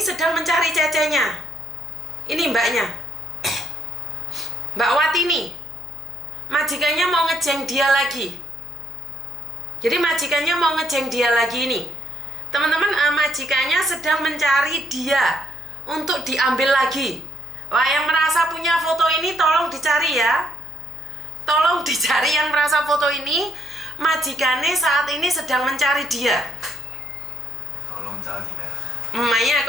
sedang mencari cecenya. Ini mbaknya, Mbak Watini. Majikannya mau ngejeng dia lagi. Jadi majikannya mau ngejeng dia lagi ini. Teman-teman, majikannya sedang mencari dia untuk diambil lagi. Wah, yang merasa punya foto ini tolong dicari ya. Tolong dicari yang merasa foto ini. Majikannya saat ini sedang mencari dia. Tolong cari ya. 唔係啊，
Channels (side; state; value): left; noise; hum, 24 dB below the sound